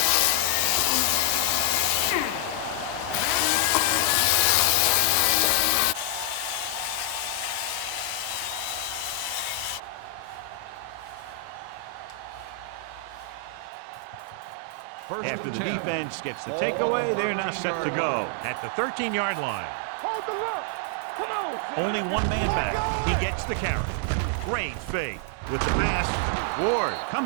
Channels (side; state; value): both; different; correlation 0.00